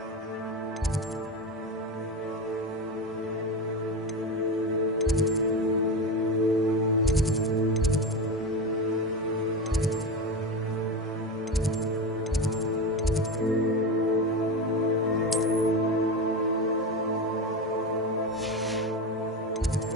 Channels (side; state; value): both; normal; correlation 0.20